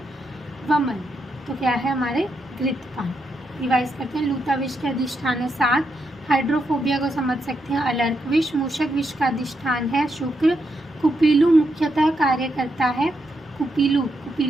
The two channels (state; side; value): normal; both; correlation 0.82